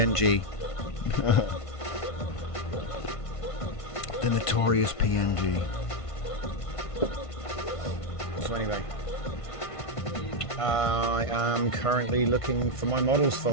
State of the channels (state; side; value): late; right; 1.5 ms